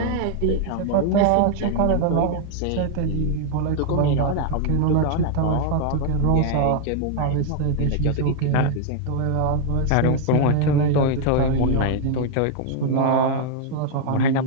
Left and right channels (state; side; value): different; both; correlation 0.00